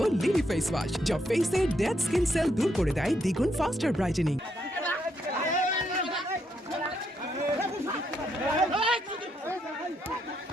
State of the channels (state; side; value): normal; both; correlation 0.77